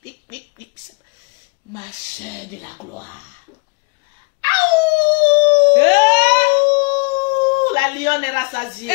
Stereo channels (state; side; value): quieter; right; 29.2 dB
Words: pic, pic, pic. Ma soeur de la gloire. La lionne est rassasiée.